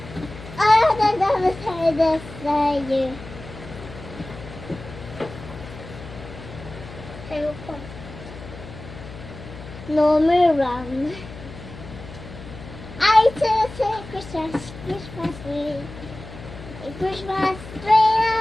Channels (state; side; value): noise; left; hum, 14 dB below the sound